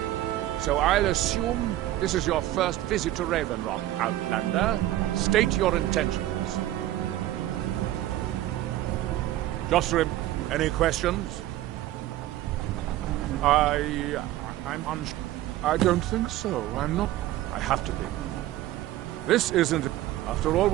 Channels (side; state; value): left; quieter; 14.6 dB